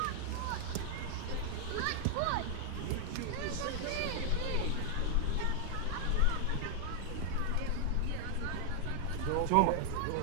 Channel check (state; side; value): different; both; correlation -0.01